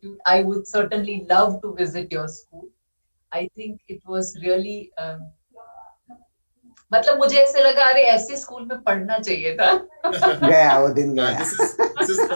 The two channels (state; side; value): inverted; both; correlation -1.00